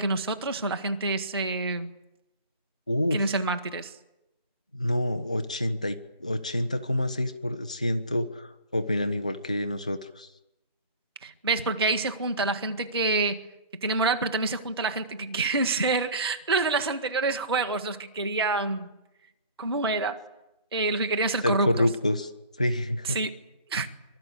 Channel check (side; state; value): both; inverted; correlation -0.45